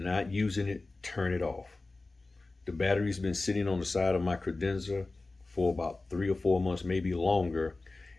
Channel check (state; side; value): quieter; right; 3.3 dB